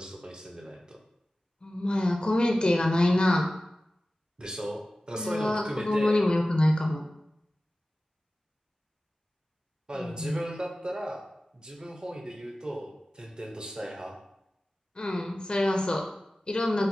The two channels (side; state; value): both; normal; correlation 0.96